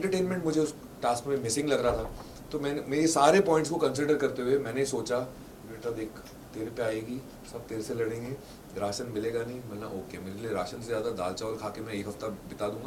मुझे उस टास्क में मिसिंग लग रहा था। तो मैंने मेरे सारे पॉइंट्स को कंसिडर करते हुए मैंने सोचा बेटा देख तेरे पे आएगी, सब तेरे से लड़ेंगे, राशन मिलेगा नहीं, मतलब ओके, मेरे लिए राशन से ज़्यादा दाल चावल खा के मैं एक हफ्ता बिता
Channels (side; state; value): both; identical; correlation 1.00